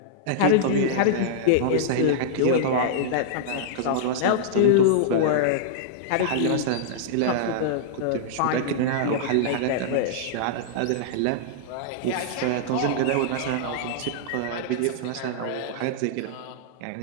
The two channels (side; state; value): both; different; correlation -0.02